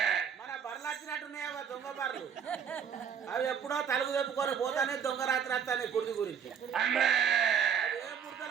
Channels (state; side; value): quieter; left; 7.5 dB